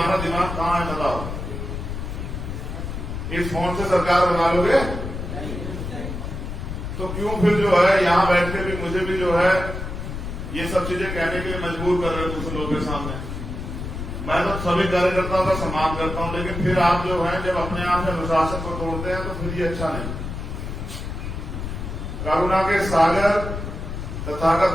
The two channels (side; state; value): left; noise; rumble, 6 dB below the sound